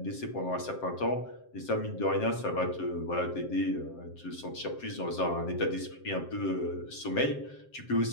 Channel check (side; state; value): right; late; 7.6 ms